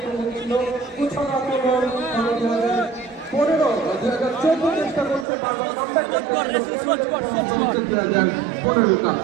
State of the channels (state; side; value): drops out; left; at 5.2 s